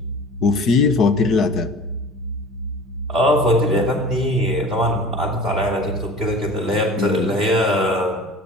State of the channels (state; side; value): normal; both; correlation 0.39